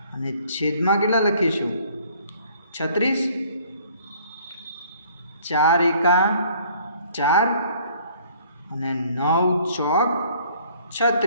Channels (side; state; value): both; inverted; correlation -0.58